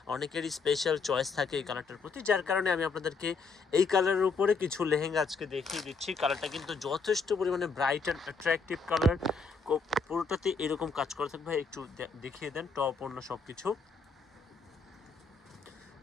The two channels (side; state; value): right; quieter; 4.5 dB